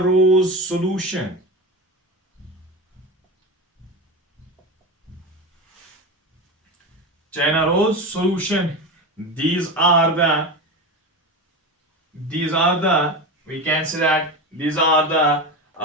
rose solution, these are the we can say that these are the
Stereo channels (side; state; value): both; normal; correlation 0.23